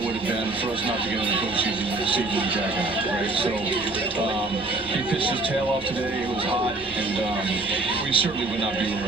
would have been for us not to get in the postseason with Jack and I, right? So he pitched his tail off today. It was hot, and we certainly would not be where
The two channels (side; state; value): left; quieter; 3.1 dB